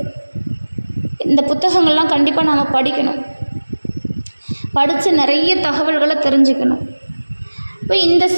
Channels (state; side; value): inverted; both; correlation -1.00